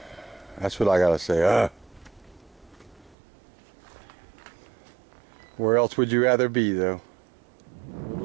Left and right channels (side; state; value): left; drops out; at 3.2 s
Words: That's what I gotta say. Where else would you rather be, though? We're a